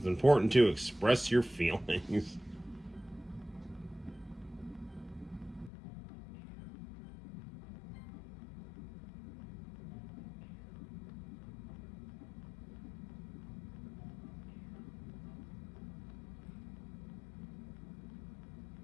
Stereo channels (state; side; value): drops out; right; at 5.7 s